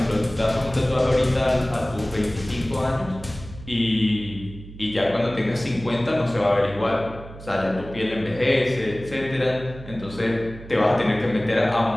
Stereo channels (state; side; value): noise; right; hum, 15 dB below the sound